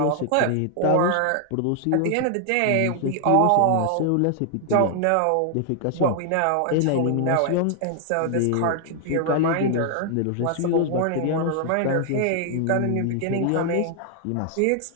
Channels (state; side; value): different; both; correlation 0.00